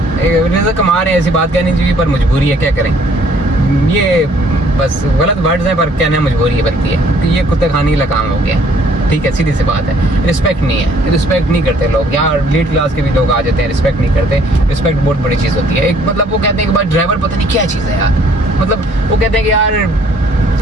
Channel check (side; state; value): both; normal; correlation 0.61